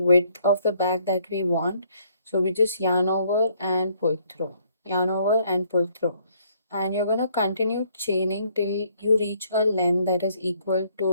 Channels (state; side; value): inverted; both; correlation -0.66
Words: of the bag that we want. So we just yarn over and pull through, yarn over and pull through. And you're going to continue chaining till you reach a length that is equal